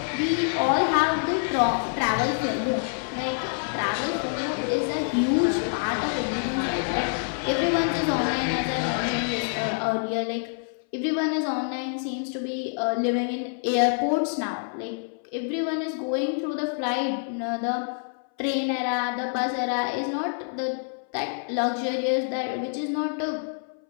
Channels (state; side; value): silent; right; 61 dB below the other